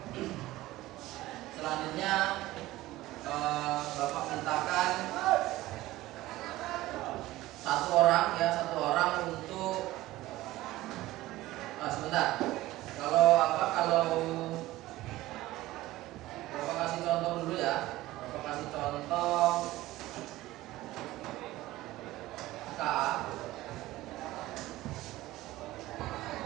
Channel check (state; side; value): quieter; left; 17.1 dB